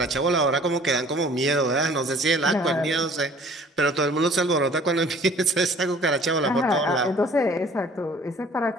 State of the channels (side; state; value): both; normal; correlation 0.52